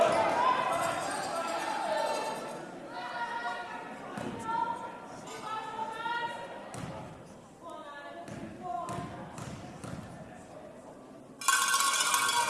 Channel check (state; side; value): identical; both; correlation 1.00